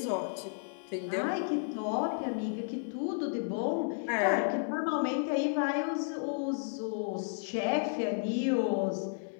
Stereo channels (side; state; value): right; silent; digital silence